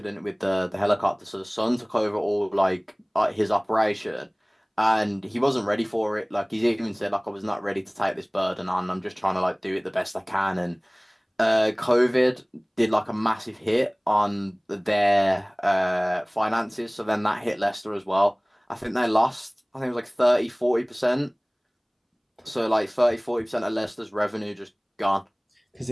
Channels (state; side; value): identical; both; correlation 1.00